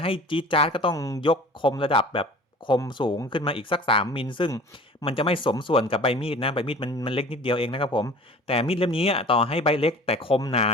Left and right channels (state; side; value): normal; both; correlation 0.44